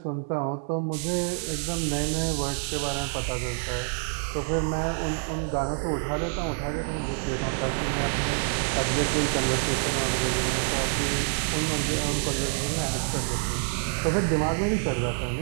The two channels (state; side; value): silent; left; 60 dB below the other